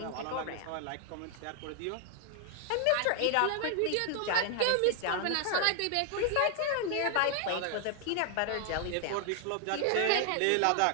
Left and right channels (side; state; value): both; different; correlation 0.00